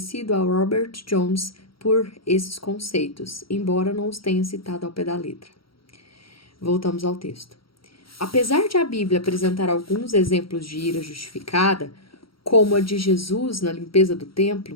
a Robert Jones por esses conceitos, embora não os tenha citado ao pé da letra. Voltamos ao texto. Apesar de a Bíblia apresentar alguns exemplos de ira justificada, como a de Jesus na limpeza do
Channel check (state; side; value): late; right; 0.75 ms